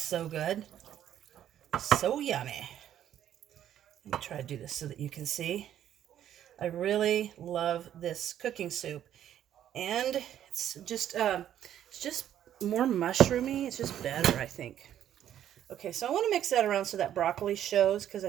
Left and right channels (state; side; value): quieter; left; 10.8 dB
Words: good. So yummy. Let me try to do this so that you can see. I really love this cooking soup. And it's just more mushroomy. It's just better, I think. Okay, so I want to mix that around so that broccoli shows because I